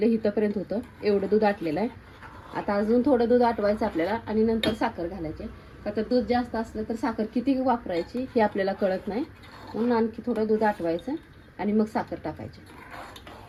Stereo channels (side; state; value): both; identical; correlation 1.00